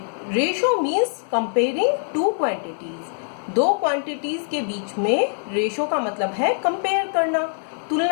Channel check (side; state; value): right; silent; digital silence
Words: ratio means comparing two quantities. दो क्वांटिटीज के बीच में रेशो का मतलब है कंपेयर करना,